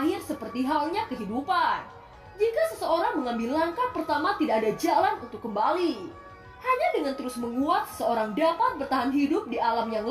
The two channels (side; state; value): both; identical; correlation 1.00